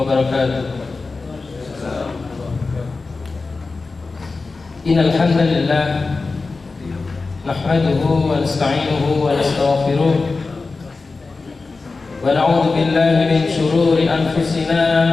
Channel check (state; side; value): quieter; right; 3.9 dB